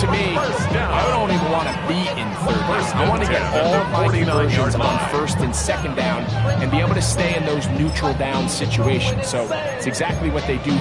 me, I don't even want to be in third down. I want to get all of my conversions on first and second down and be able to stay in those neutral down situations. So it's exactly what they do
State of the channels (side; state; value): both; identical; correlation 1.00